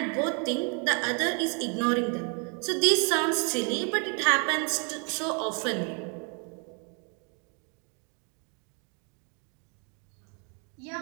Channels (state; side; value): quieter; left; 37.0 dB